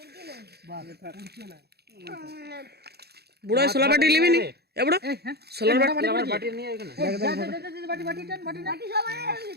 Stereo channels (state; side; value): late; left; 0.47 ms